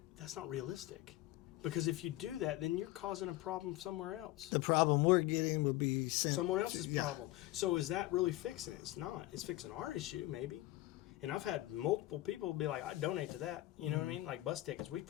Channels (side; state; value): right; quieter; 17.1 dB